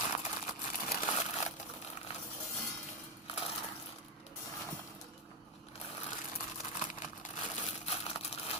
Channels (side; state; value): both; normal; correlation 0.08